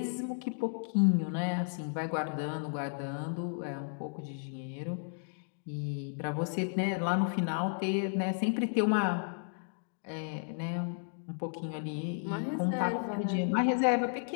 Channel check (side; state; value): right; silent; digital silence